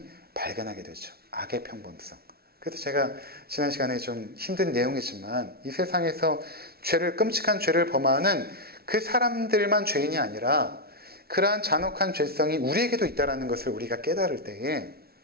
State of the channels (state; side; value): late; left; 0.45 ms